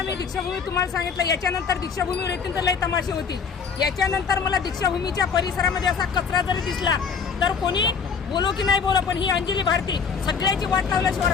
मी दीक्षाभूमी तुम्हाला सांगितलं, याच्यानंतर दीक्षाभूमीवर येतील तर लय तमाशे होतील. याच्यानंतर मला दीक्षाभूमीच्या परिसरामध्ये असा कचरा जरी दिसला तर कोणी बोलो की नाही बोलो, पण ही अंजली भारती सगळ्याची वाट लावल्याशिवाय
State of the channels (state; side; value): quieter; right; 5.9 dB